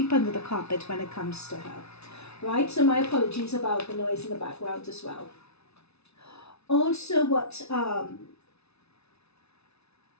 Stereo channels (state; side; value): late; right; 0.80 ms